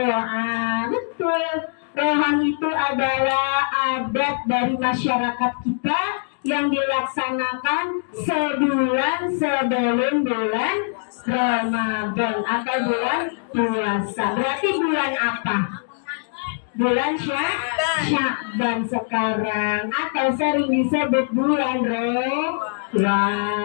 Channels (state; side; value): silent; right; digital silence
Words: betul. Rewahan itu adalah adat dari masyarakat kita yang dilaksanakan sebulan sebelum bulan Ramadan atau bulan puasa. Berarti bulan apa? Bulan Sya'ban sekarang, atau sering disebut bulan